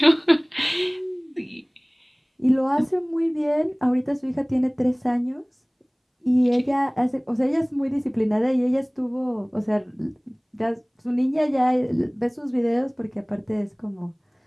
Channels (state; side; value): identical; both; correlation 1.00